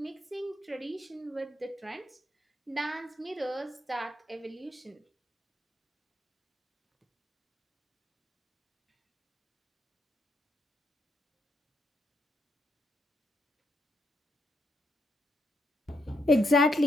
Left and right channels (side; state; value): both; normal; correlation 0.78